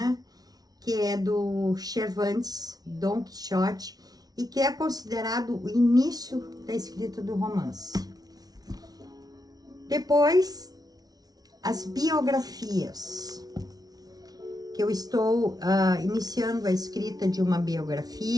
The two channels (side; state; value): left; late; 0.19 ms